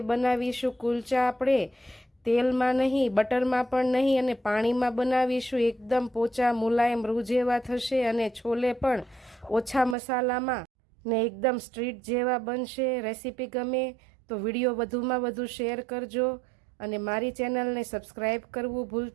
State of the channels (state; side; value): drops out; left; at 10.0 s